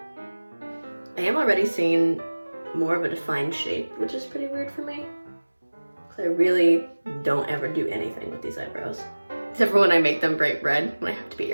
I am already seeing more of a defined shape, which is pretty weird for me, because I really don't ever do anything with these eyebrows. except for when I make them bright red when I have to be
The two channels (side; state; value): both; inverted; correlation -1.00